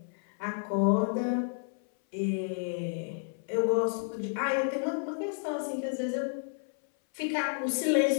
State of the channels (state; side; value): silent; right; 57 dB below the other